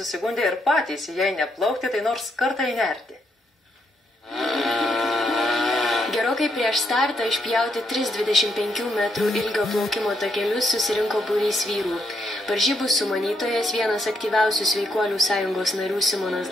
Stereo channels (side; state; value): both; normal; correlation 0.77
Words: ir patys, jei neplaukti, tai nors kartą įnerti. Gerokai prieš startą išpjauti 3,25 metrų ilgio plaukimo takelius susirinko būrys vyrų. Varžybų sumanytojas, vienas aktyviausių Sveikuolių sąjungos narių Simonas